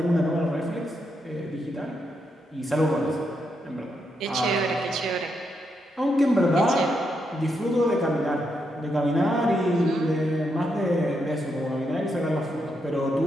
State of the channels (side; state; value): both; normal; correlation 0.81